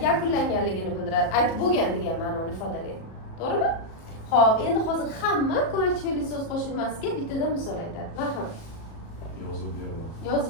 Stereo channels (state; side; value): late; right; 37 ms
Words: yakunlanganligini bildiradi. Aytib bo'lgan degan ma'noni ifodalaydi. To'g'rimi? Xo'p, endi hozir hamma ko'makchi fe'lli so'z qo'shilmasiga bittadan misol aytadi. Marhamat. Yozib berdim.